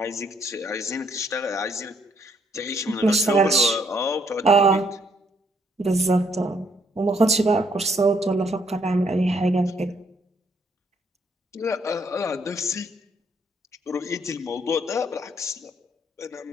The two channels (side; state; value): both; normal; correlation 0.69